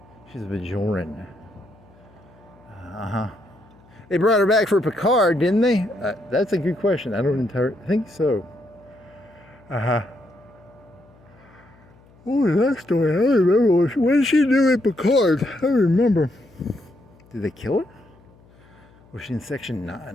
She's a Bajoran. They brought her back for Picard, didn't they? That's a good question. I think so. What was that story? I don't remember. What did she do at Picard? I don't remember. Did they kill her? Was she in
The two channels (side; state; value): left; noise; hum, 27 dB below the sound